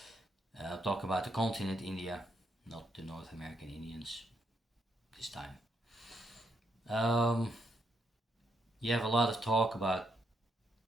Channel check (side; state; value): both; normal; correlation 0.77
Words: I'll talk about the continent India, not the North American Indians this time. Um, you have a lot of talk about